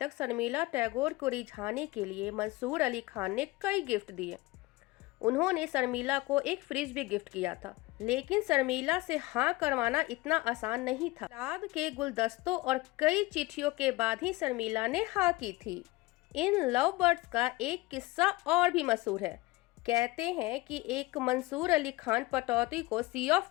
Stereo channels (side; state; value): right; quieter; 20.8 dB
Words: शर्मिला टैगोर को रिझाने के लिए मंसूर अली खान ने कई गिफ्ट दिए। उन्होंने शर्मिला को एक फ्रिज भी गिफ्ट किया था, लेकिन शर्मिला से हाँ करवाना इतना आसान नहीं था। गुलाब के गुलदस्तों और कई चिट्ठियों के बाद ही शर्मिला ने हाँ की थी। इन लव बर्ड्स का एक किस्सा और भी मशहूर है। कहते हैं कि एक मंसूर अली खान पटौदी को सी ऑफ